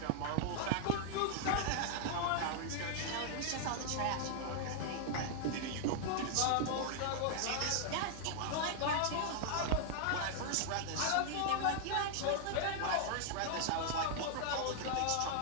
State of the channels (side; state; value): both; different; correlation 0.00